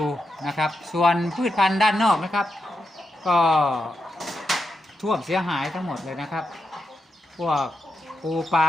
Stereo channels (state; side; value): normal; both; correlation 0.86